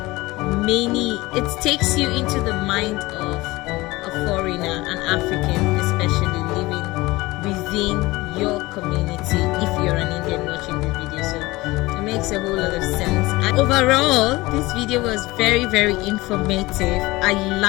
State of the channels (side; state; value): right; quieter; 20.6 dB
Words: many, it takes you into the mind of a foreigner, an African especially, living within your community if you're an Indian watching this video. So it makes a whole lot of sense. And overall, this video was very, very informative. I